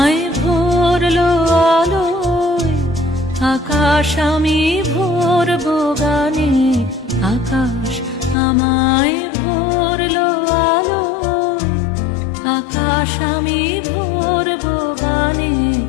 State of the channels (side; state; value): right; drops out; at 8.3 s